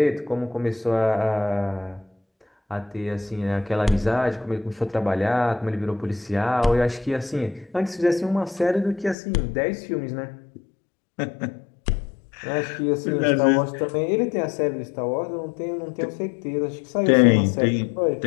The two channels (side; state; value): right; drops out; at 9.2 s